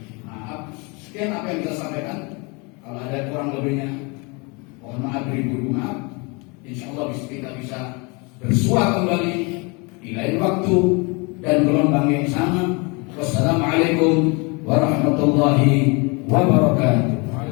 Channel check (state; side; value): quieter; right; 29.9 dB